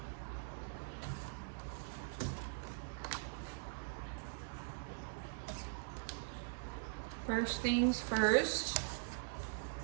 First things first.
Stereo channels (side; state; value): left; silent; digital silence